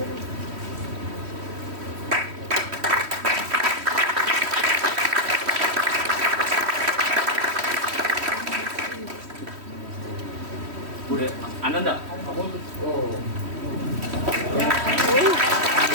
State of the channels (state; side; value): late; left; 3.1 ms